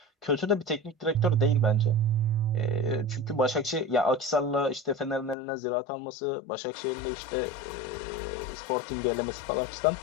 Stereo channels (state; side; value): drops out; right; at 5.4 s